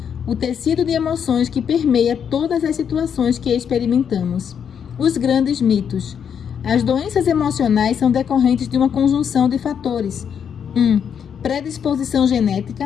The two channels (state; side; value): quieter; right; 7.8 dB